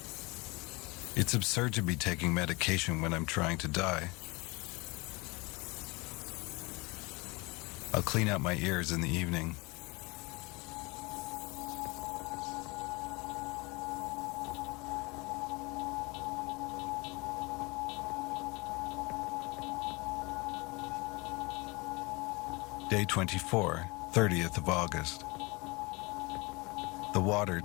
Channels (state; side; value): quieter; right; 26.1 dB